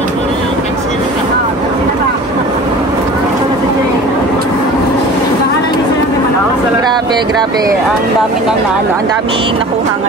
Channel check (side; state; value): both; normal; correlation 0.41